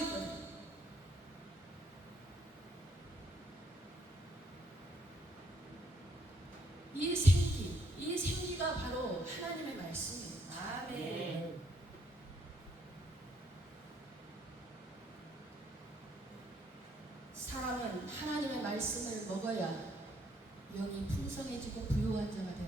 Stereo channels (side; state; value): both; normal; correlation 0.71